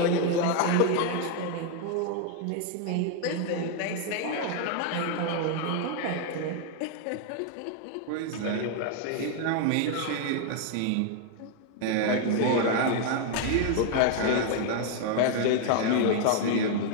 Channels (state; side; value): different; both; correlation 0.00